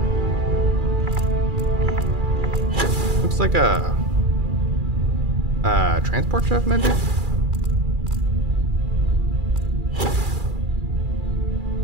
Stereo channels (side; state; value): left; late; 2.4 ms